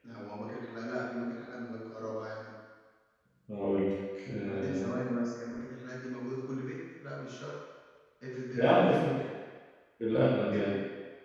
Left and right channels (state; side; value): identical; both; correlation 1.00